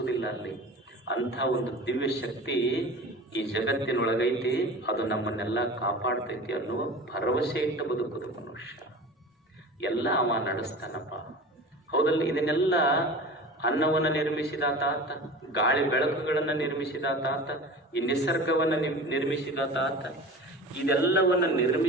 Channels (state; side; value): normal; both; correlation 0.36